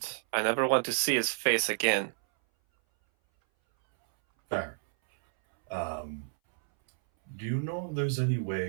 I never want to see his face again. Fair. Do you know if there's any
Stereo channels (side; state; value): left; silent; 58 dB below the other